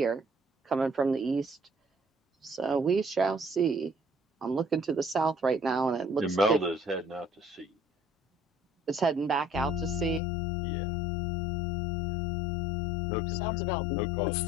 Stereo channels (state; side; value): drops out; right; at 10.2 s